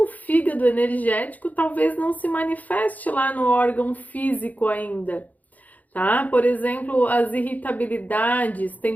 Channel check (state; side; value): late; right; 0.078 ms